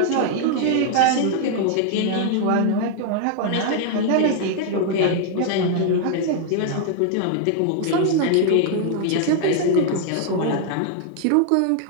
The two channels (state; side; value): different; both; correlation 0.00